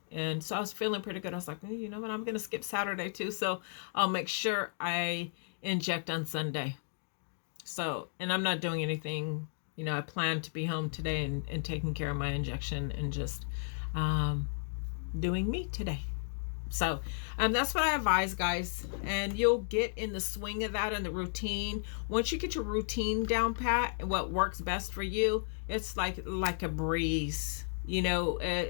And so I was feeling pretty good. I was like, you know what? I'm going to skip Saturday too. So I'll make sure I inject on Sunday. So, and I'm not doing anything, I plan to be home today and taking care of my injection and just, doing me today. So, that's what I advise, guys. And you'll get in the swing of that and the routine. Once you get your routine down pat, what works best for you, it's like a breeze.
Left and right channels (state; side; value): silent; right; digital silence